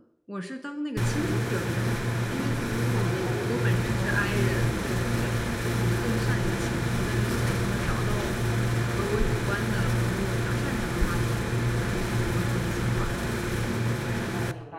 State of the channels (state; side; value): identical; both; correlation 1.00